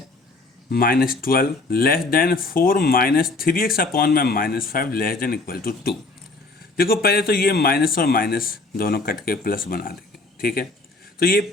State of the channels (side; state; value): right; quieter; 3.4 dB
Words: -12 लेस देन 4 -3x अपॉन में -5 लेस देन इक्वल टू 2। देखो पहले तो ये माइनस और माइनस दोनों कट के प्लस बना देंगे, ठीक है। तो ये